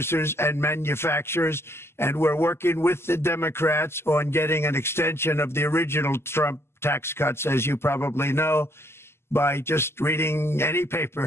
and manufacturers. And we're working with the Democrats on getting an extension of the original Trump tax cuts, as you probably know, by just reading any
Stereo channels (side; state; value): right; late; 0.12 ms